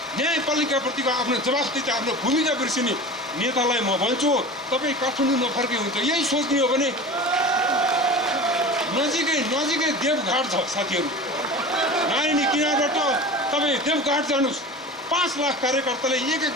न्यायपालिकाप्रतिको आफ्नो जवाफदेही, आफ्नो भूमिका बिर्सिने नेतालाई म भन्छु, तपाईँ काठमाडौँ नफर्के हुन्छ। यही सोच्ने हो भने नजिकै देवघाट छ साथीहरू। नारायणी किनारबाट तपाईँ देवघाट जानुहोस्, 5 लाख कार्यकर्ताले 1-1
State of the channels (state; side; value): normal; both; correlation 0.34